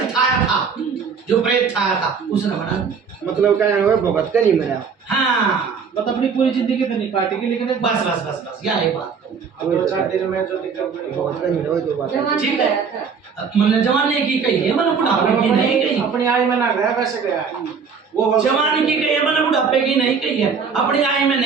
छाया था जो प्रेत छाया था उसने बना दिया मतलब क्या है भगत का नहीं मरा। हाँ मतलब अपनी पूरी जिंदगी तो नहीं काटेगी लेकिन एक बस बस बस बस यही बात अब 2-4 दिन में जो दिक्कत बड़ी भगत का नहीं रहा तो बात है। जवान ठीक गया है था। मैंने जवानी की कही है मैंने बुढ़ापे की नहीं कही अपनी आय में ना गया वैसे गया वो जवानी की कही है मैंने बुढ़ापे की नहीं कही है अपनी आय में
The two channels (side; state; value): left; quieter; 5.9 dB